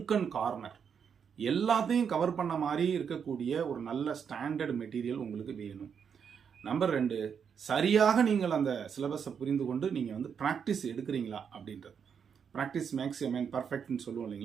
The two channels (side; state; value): left; quieter; 7.1 dB